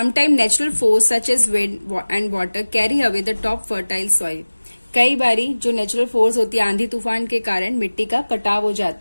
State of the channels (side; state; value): both; inverted; correlation -1.00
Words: natural force such as wind and water carry away the top fertile soil. कई बारी जो नेचुरल फोर्स होती है, आंधी तूफान के कारण मिट्टी का कटाव हो